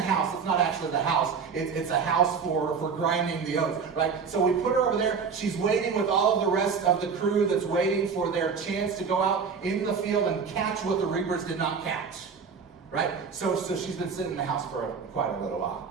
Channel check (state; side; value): quieter; left; 5.8 dB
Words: house. It's not actually the house. It's a house for grinding the oats, right? So we put her over there. She's waiting with all of the rest of the crew that's waiting for their chance to go out into the field and catch what the reapers did not catch, right? So she's been sitting in the house for quite a little while.